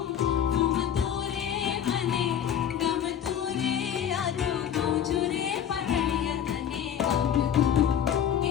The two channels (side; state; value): right; quieter; 9.3 dB